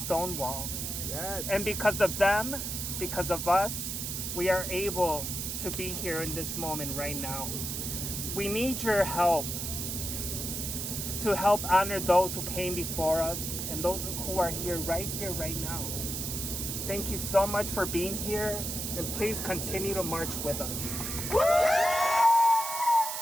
Yes. And because of them, because of us, we are able to be here in this moment right now. We need your help to help honor those who came before us and those who are here, right now. Thank you so much for being here, and please continue to march with us.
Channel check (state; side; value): noise; right; hiss, 4 dB below the sound